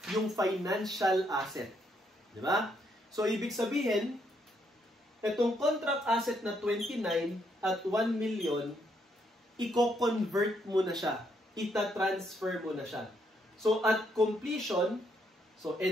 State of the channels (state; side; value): normal; both; correlation 0.74